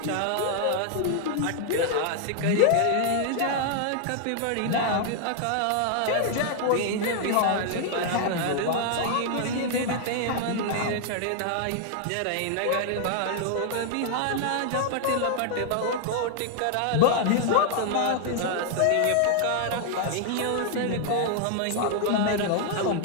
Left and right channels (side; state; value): both; different; correlation 0.00